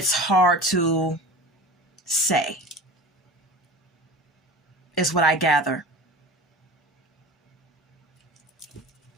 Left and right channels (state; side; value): normal; both; correlation 0.36